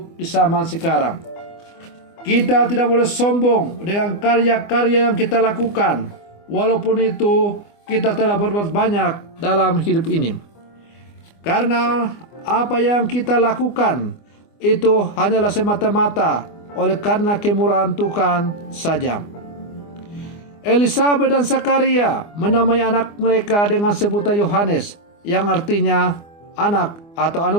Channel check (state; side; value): late; right; 24 ms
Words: di zaman sekarang. Kita tidak boleh sombong dengan karya-karya yang kita lakukan, walaupun itu kita telah berbuat banyak dalam hidup ini. Karena apa yang kita lakukan itu hanyalah semata-mata oleh karena kemurahan Tuhan saja. Elisabet dan Zakaria menamai anak mereka dengan sebutan Yohanes, yang artinya anak atau